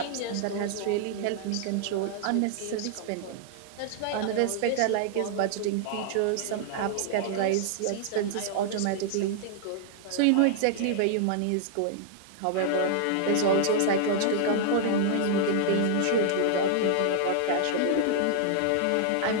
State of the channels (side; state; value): both; different; correlation -0.01